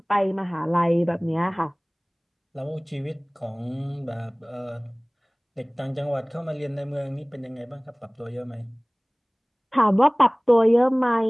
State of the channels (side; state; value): both; identical; correlation 1.00